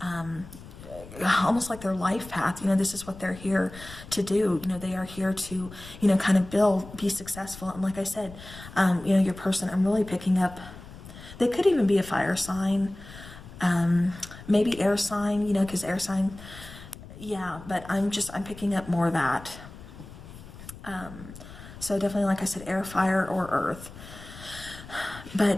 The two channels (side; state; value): left; noise; rumble, 16 dB below the sound